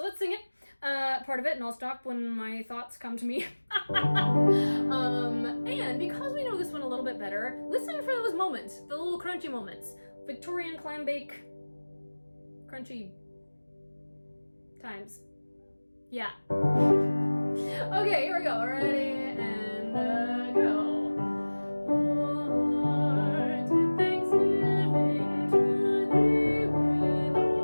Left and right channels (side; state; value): both; inverted; correlation -1.00